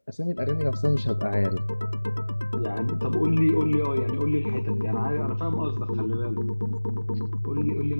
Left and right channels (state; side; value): inverted; both; correlation -1.00